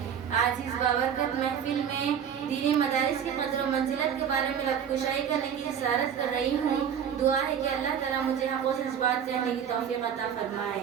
آج اس بابرکت محفل میں دینی مدارس کی قدر و منزلت کے بارے میں لب کشائی کرنے کی اصرارت کر رہی ہوں دعا ہے کہ اللہ تعالیٰ مجھے حق و سچ بات کہنے کی توفیق عطا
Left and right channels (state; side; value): quieter; left; 8.2 dB